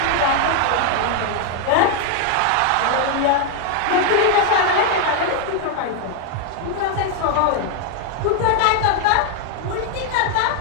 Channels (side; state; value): both; different; correlation 0.00